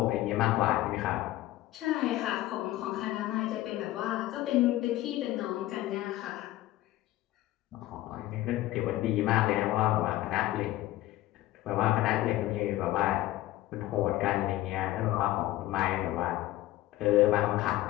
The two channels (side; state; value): right; quieter; 15.8 dB